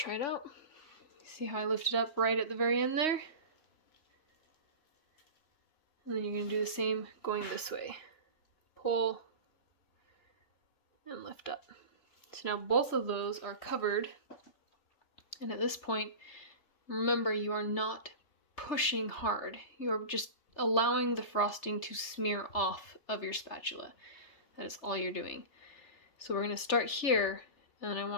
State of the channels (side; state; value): right; late; 3.3 ms